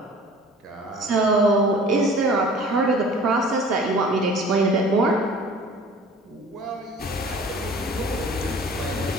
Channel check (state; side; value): normal; both; correlation 0.46